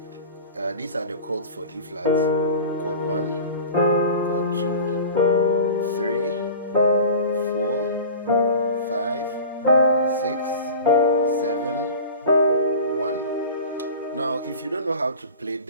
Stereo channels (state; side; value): inverted; both; correlation -0.36